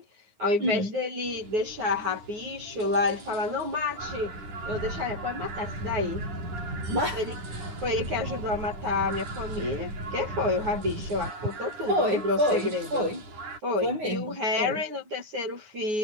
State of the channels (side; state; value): left; late; 9.8 ms